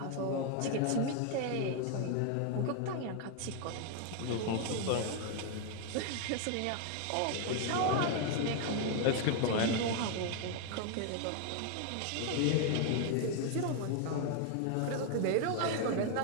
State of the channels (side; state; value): both; different; correlation 0.00